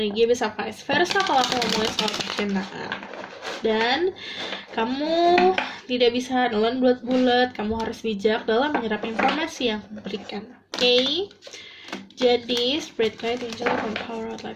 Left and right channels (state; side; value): identical; both; correlation 1.00